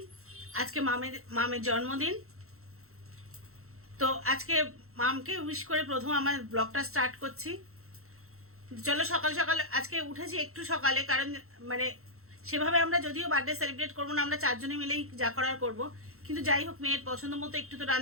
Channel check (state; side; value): late; left; 0.63 ms